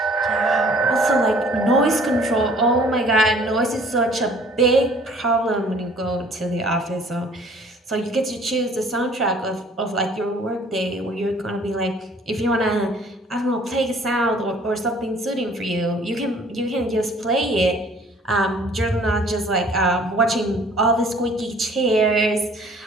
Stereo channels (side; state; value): both; normal; correlation 0.54